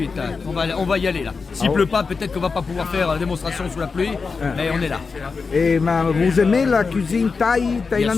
Là. On va y aller là. S'il pleut pas, peut-être qu'on va pas pouvoir faire la démonstration sous la pluie, mais on est là. Et vous aimez la cuisine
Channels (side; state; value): right; quieter; 4.8 dB